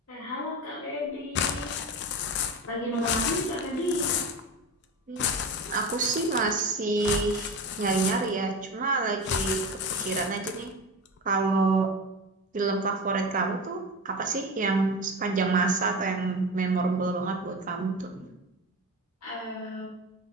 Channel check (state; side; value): normal; both; correlation 0.27